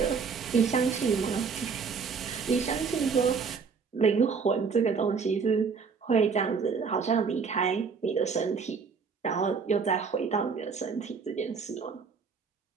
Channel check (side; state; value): left; quieter; 5.5 dB